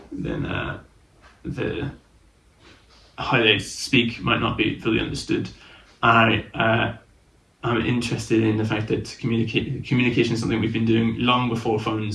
then how they speak might not be fully understood. I'm interested in the fact that communication is something we've been doing long before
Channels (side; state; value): both; identical; correlation 1.00